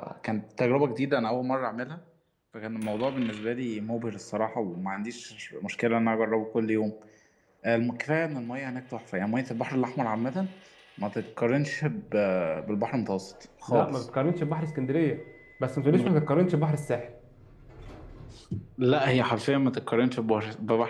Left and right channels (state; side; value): identical; both; correlation 1.00